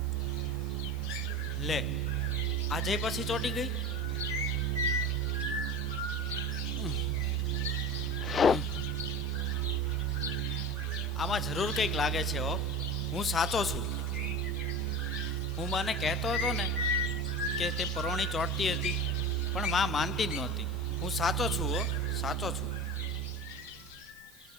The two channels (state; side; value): noise; right; hiss, 24 dB below the sound